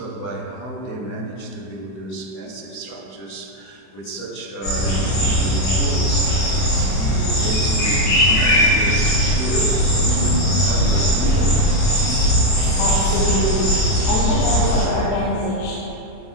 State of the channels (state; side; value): late; right; 32 ms